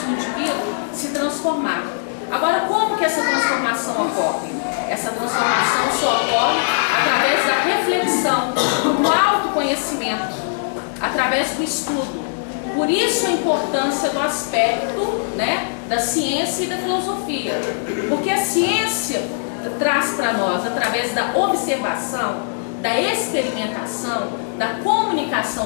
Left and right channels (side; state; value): right; silent; digital silence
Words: o indivíduo se transformar. Agora, como que essa transformação ocorre? Essa transformação só ocorre através da reflexão, do autoconhecimento, através do estudo. Por isso a importância do aspecto, né, da ciência e da filosofia. Porque a ciência traz para nós, através da observação, da experimentação, da